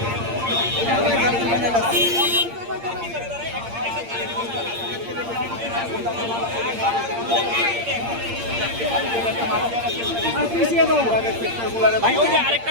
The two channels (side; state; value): left; late; 8.7 ms